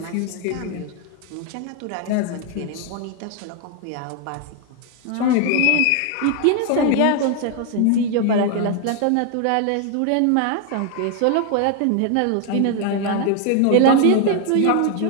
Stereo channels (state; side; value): different; both; correlation 0.01